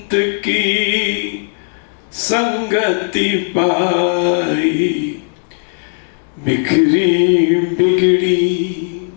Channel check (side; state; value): right; silent; 69 dB below the other